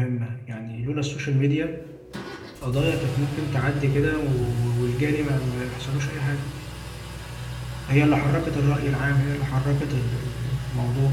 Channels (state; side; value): identical; both; correlation 1.00